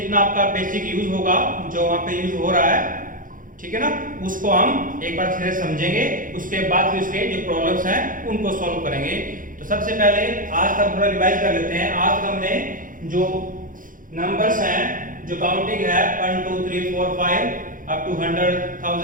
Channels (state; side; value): late; left; 0.39 ms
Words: आपका बेसिक यूज होगा, जो वहां पे यूज हो रहा है, ठीक है ना, उसको हम एक बार फिर समझेंगे। उसके बाद फिर उसके जो प्रॉब्लम्स हैं उनको सॉल्व करेंगे। तो सबसे पहले आज का थोड़ा रिवाइज कर लेते हैं। आज तक हमने जो नंबर्स हैं, जो काउंटिंग है 1 2 3 4 5 अप टू